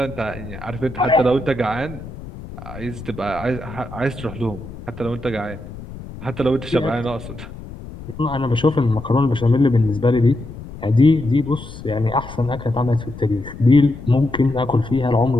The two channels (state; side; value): noise; left; rumble, 13 dB below the sound